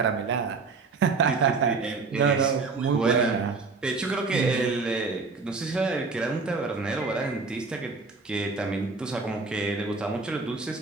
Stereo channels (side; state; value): left; quieter; 4.3 dB